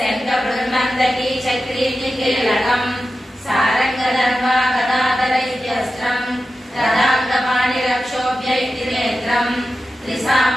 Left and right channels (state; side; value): normal; both; correlation 0.92